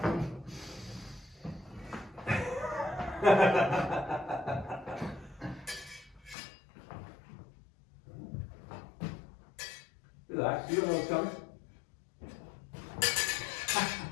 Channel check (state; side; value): drops out; right; at 6.4 s